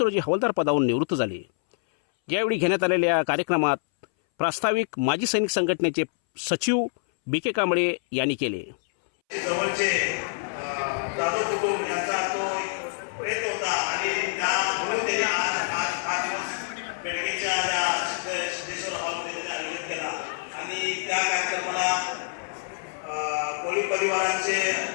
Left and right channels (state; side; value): silent; right; 61 dB below the other